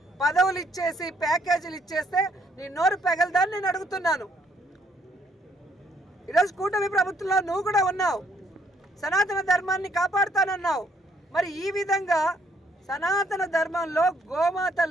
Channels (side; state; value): both; normal; correlation 0.68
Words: పదవులు ఇచ్చేసి ప్యాకేజీలు ఇచ్చేస్తే నీ నోరు పెగలదాన్ని నేను అడుగుతున్నాను. ఈరోజు కూటమి ప్రభుత్వంలో నువ్వు కూడా ఉన్నావు, సనాతన ధర్మాన్ని కాపాడుతానన్నావు. మరి ఈ విధంగా సనాతన ధర్మంలో